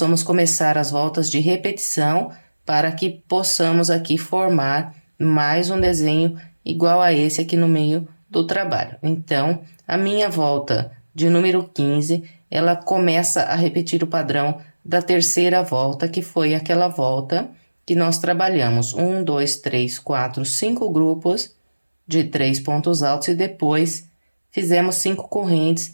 começar as voltas de repetição para que possamos aqui formar mais um desenho igual a esse aqui no meio do trabalho. Então, a minha volta de número 15, ela começa a repetir o padrão da terceira volta, que foi aquela volta que nós trabalhamos 1, 2, 3, 4, 5 grupos de 3 pontos altos e depois fizemos 5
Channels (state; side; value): inverted; both; correlation -1.00